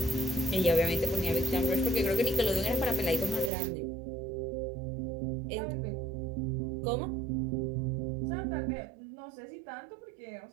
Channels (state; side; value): drops out; left; at 3.5 s